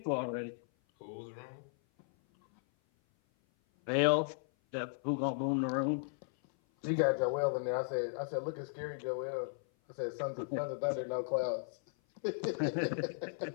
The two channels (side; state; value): right; silent; 54 dB below the other